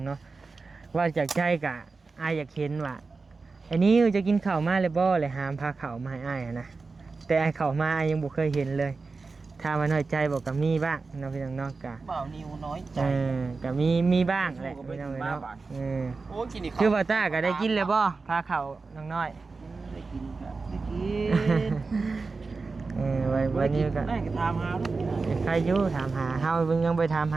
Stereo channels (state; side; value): quieter; left; 4.1 dB